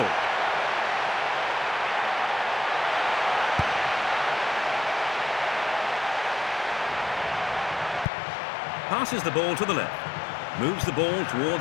Passes the ball to the left. Moves the ball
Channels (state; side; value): drops out; right; at 8.1 s